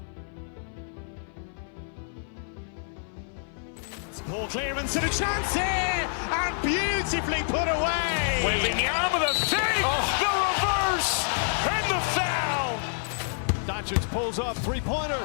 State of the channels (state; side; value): silent; right; 57 dB below the other